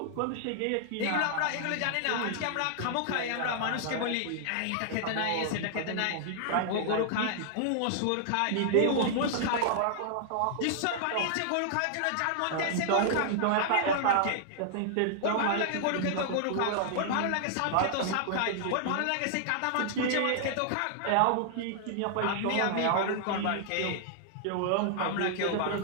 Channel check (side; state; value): both; different; correlation -0.01